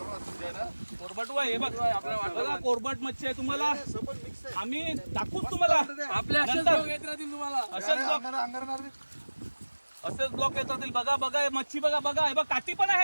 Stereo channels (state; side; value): inverted; both; correlation -1.00